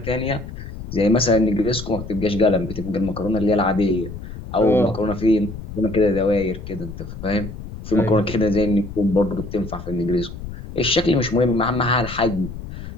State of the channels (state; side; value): noise; left; rumble, 10 dB below the sound